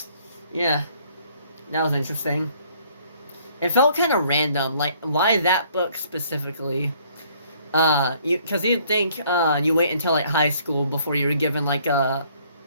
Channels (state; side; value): inverted; both; correlation -0.62